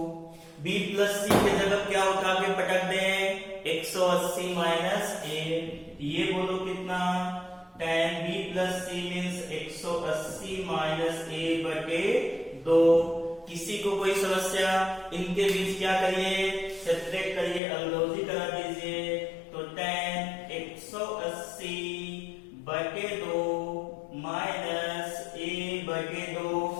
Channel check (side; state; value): right; drops out; at 17.6 s